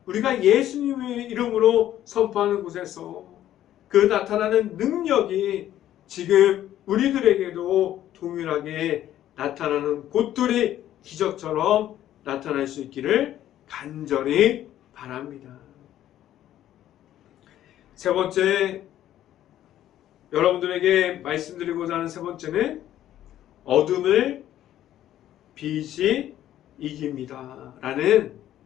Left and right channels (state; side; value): quieter; right; 12.3 dB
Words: 우리가 예수님의 이름으로 선포하는 곳에서 그 나타나는 능력이 지금 우리들에게도 동일하게 나타나는 곳들이 기적처럼 나타날 수 있기를 간절히 바랍니다. 세 번째, 여러분들에게 말씀드리고자 하는 세 번째는 어둠을 빛이 이깁니다. 라는